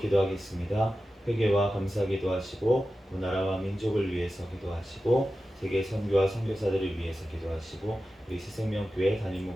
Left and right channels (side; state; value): both; normal; correlation 0.93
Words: 회개와 감사 기도하시고 그 나라와 민족을 위해서 기도하시고 세계 선교와 선교사들을 위해서 기도하시고 우리 새생명교회 담임